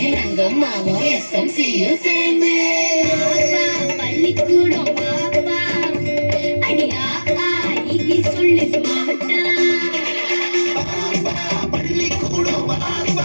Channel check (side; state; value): both; inverted; correlation -1.00